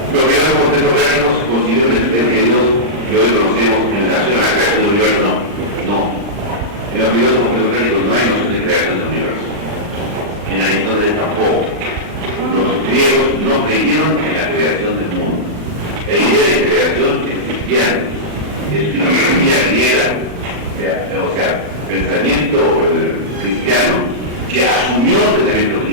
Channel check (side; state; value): left; late; 40 ms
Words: Los filósofos orgánicos consideran la existencia de Dios que hoy conocemos en relación a la creación del universo, no. En los filósofos orgánicos no hay noción de creación del universo. En Aristóteles tampoco. Los griegos no creyeron en la creación del mundo. La idea de creación es cristiana, es filosofía griega, o sea, pensamiento cristiano que asumió el pensamiento